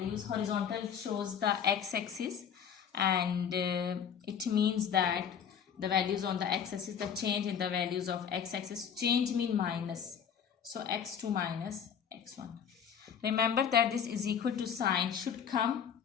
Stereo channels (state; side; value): quieter; right; 7.8 dB